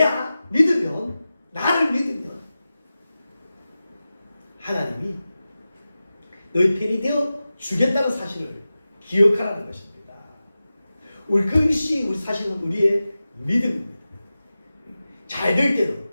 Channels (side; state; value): both; inverted; correlation -0.94